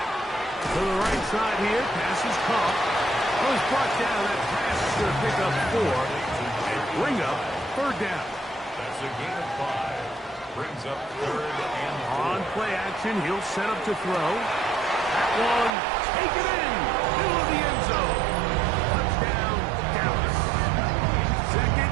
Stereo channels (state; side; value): drops out; left; at 15.7 s